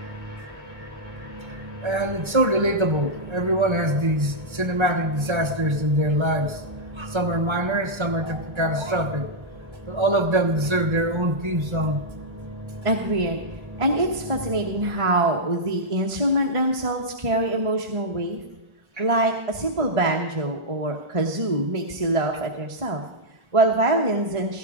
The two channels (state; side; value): late; left; 1.3 ms